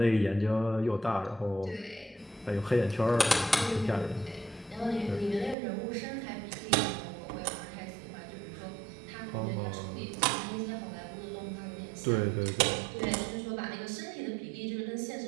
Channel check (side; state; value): left; drops out; at 5.6 s